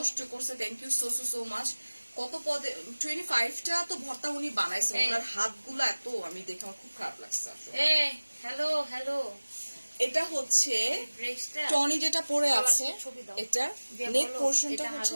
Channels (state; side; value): inverted; both; correlation -1.00